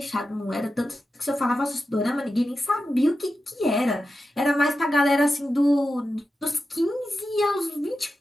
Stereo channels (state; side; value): normal; both; correlation 0.91